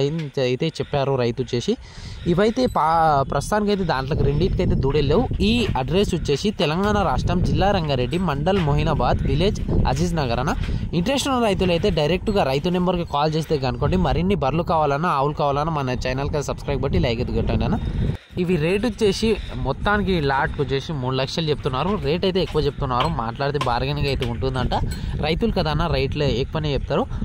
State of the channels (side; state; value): both; identical; correlation 1.00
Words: అయితే చెప్పారు రైతు వచ్చేసి. ఇవైతే ప్రస్తుతానికి అయితే దాంట్లోకి రెండింటికైతే దూడెళ్ళవు. ఈ అడ్రస్ వచ్చేసి తెలంగాణ రాష్ట్రం జిల్లా రంగారెడ్డి మండల్ మొహినాబాద్ విలేజ్ అజీజ్ నగర్ అన్న. ఇంట్రెస్ట్ ఉన్న రైతులు అయితే డైరెక్ట్గా రైతు నెంబర్కి కాల్ చేస్తే కనుకోండి. మరిన్ని బర్రెలు కావాలన్నా ఆవులు కావాలన్నా మన ఛానల్కి సబ్స్క్రైబ్ బట్టి లైక్ అయితే కొట్టండి అన్న. ఇవి రేట్ వచ్చేసి మొత్తానికి లాట్కి వచ్చేసి 3 లక్షలు చెప్తున్నారు. రేట్ అయితే ఎక్కువ చెప్తున్నారు, మాట్లాడితే బార్గెనింగ్ అయితే ఉంటుందంట. రైతులు కదా అన్న, రేట్లు ఎక్కువనే చెప్తారు.